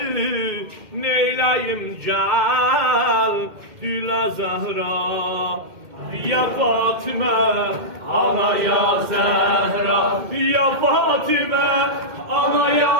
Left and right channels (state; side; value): late; left; 2.1 ms